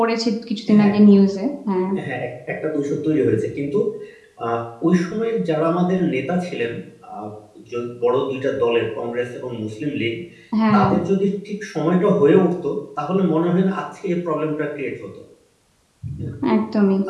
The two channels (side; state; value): both; identical; correlation 1.00